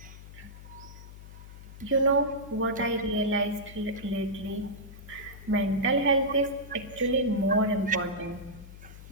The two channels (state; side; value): noise; left; hum, 15 dB below the sound